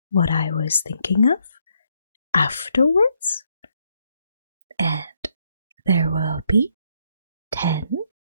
what I was thinking of afterwards, and there will be 10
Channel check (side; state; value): both; inverted; correlation -0.74